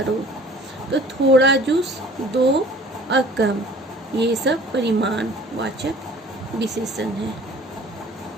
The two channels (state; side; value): normal; both; correlation 0.49